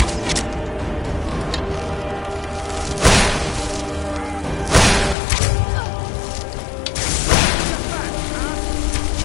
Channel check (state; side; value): drops out; right; at 5.2 s